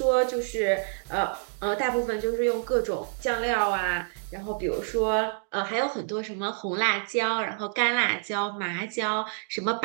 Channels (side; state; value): left; silent; digital silence